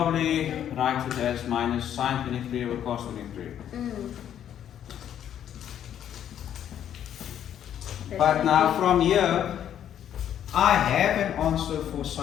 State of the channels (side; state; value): right; quieter; 10.1 dB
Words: write it as minus sine 23 over cos 23. But now from here, I have an answer for